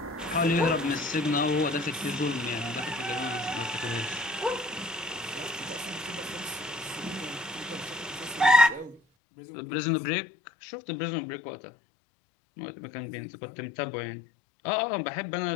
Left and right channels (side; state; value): right; drops out; at 9.0 s